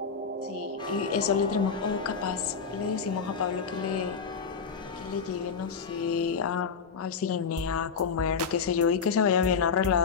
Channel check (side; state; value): right; quieter; 5.8 dB